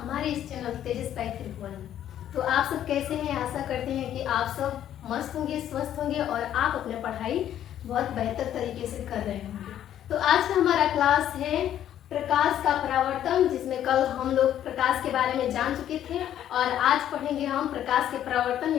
इस चैनल तेजस पैथ्रिक। तो आप सब कैसे हैं? आशा करते हैं कि आप सब मस्त होंगे, स्वस्थ होंगे और आप अपने पढ़ाई बहुत बेहतर तरीके से कर रहे होंगे। तो आज का हमारा क्लास है प्रकाश का परावर्तन, जिसमें कल हम लोग प्रकाश के बारे में जान चुके थे और आज पढ़ेंगे हम प्रकाश के परावर्तन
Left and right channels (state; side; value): quieter; right; 11.0 dB